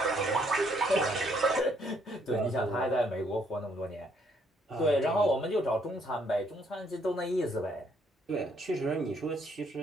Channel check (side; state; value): both; normal; correlation 0.69